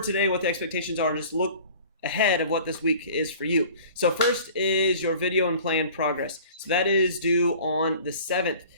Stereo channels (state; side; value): inverted; both; correlation -0.46